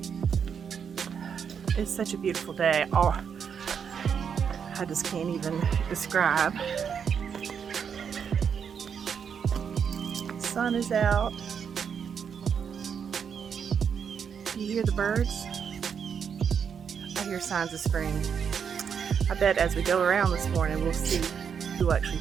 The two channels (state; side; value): quieter; left; 7.1 dB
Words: It's such a beautiful day. Oh, I just can't even describe. The sun is out. Do you hear the birds? I hear signs of spring. I bet as we go around this morning, we'll actually